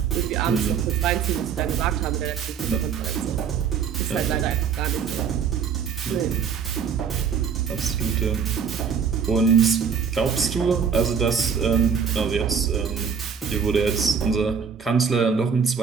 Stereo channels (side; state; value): left; quieter; 6.8 dB